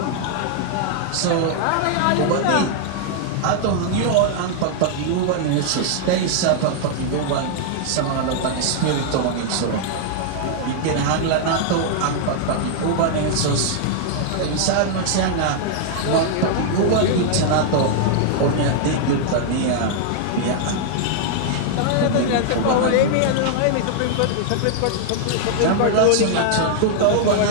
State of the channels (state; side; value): different; both; correlation -0.01